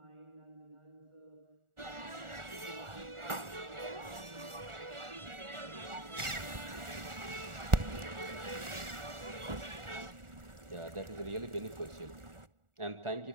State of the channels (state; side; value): late; left; 1.4 ms